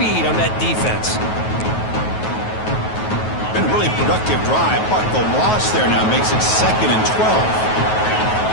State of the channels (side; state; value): right; late; 9.3 ms